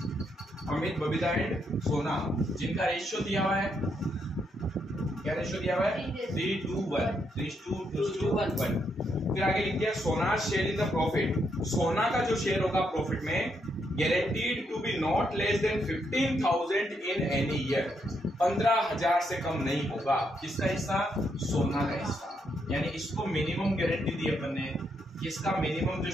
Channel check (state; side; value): normal; both; correlation 0.78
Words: अमित, बबीता एंड सोना, जिनका रेशियो दिया हुआ है, क्या रेशियो दिया हुआ है? 3:1, 3:1। फिर आगे लिख दिया सोना शेयर इन द प्रॉफिट, सोना का जो शेयर होगा प्रॉफिट में, guaranteed to be not less than 15,000 in any year, 15,000 से कम नहीं होगा। किसका हिस्सा? सोना का हिस्सा। यानी इसको मिनिमम गारंटी दी अपन ने, इसका मिनिमम जो